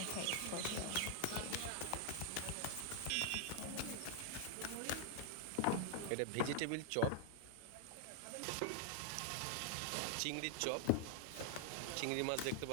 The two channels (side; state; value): both; different; correlation 0.00